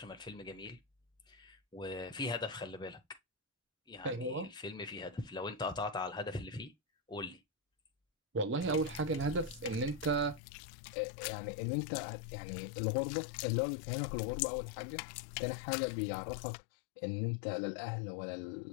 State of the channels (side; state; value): right; drops out; at 10.4 s